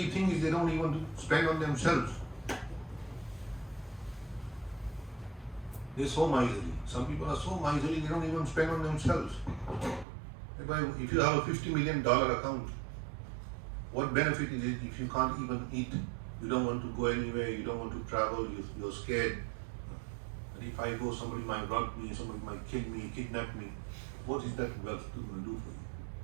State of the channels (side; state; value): left; drops out; at 10.1 s